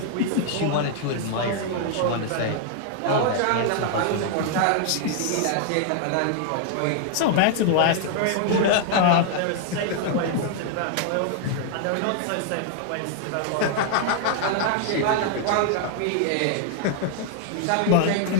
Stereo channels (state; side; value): different; both; correlation 0.00